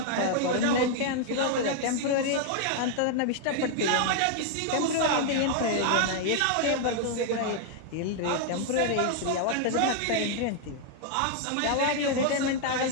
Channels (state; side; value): different; both; correlation 0.00